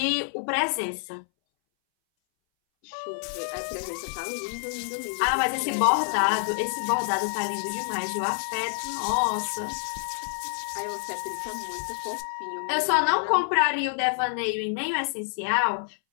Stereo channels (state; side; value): silent; right; 60 dB below the other